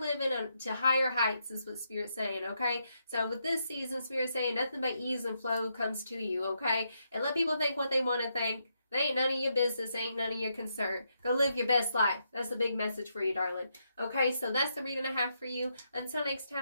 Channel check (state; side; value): inverted; both; correlation -0.80